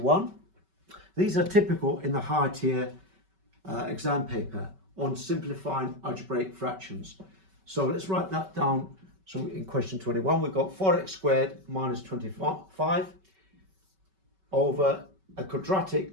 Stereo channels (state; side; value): late; left; 5.2 ms